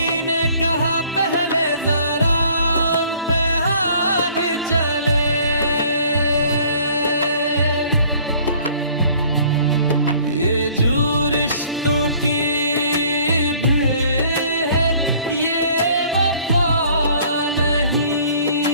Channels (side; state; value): both; inverted; correlation -0.55